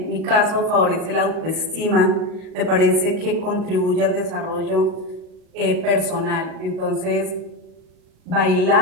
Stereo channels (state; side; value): late; left; 38 ms